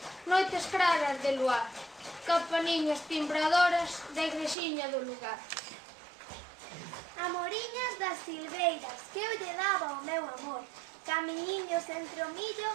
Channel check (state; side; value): drops out; left; at 4.5 s